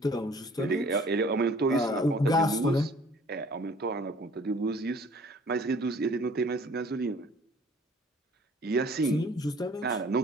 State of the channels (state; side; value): normal; both; correlation 0.53